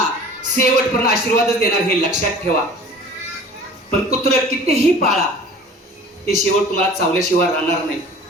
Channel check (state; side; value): normal; both; correlation 0.44